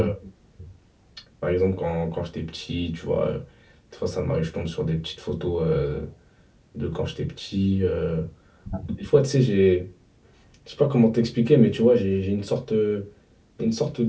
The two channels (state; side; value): identical; both; correlation 1.00